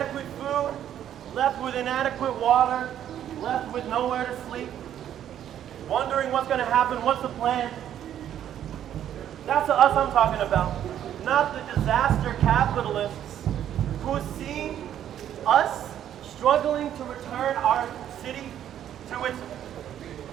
food, left with inadequate water, left with nowhere to sleep, wondering what's going to happen, what's the plan. That's the us I'm talking about, not the disaster capitalists who see us struggling to return our city to its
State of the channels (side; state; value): left; quieter; 10.6 dB